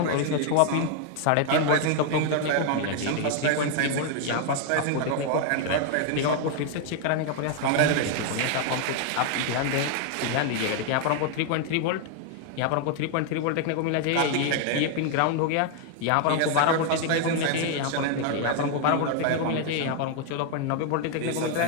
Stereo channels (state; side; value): different; both; correlation 0.00